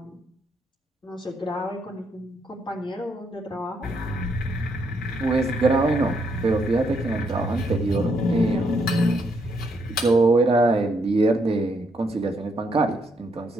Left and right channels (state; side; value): normal; both; correlation 0.75